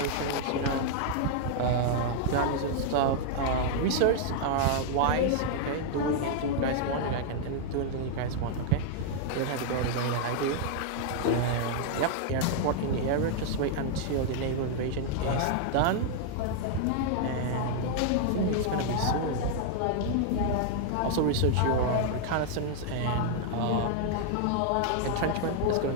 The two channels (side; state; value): both; different; correlation 0.00